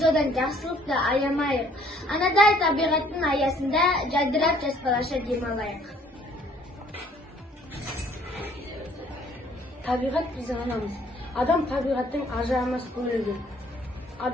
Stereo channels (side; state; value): both; normal; correlation 0.60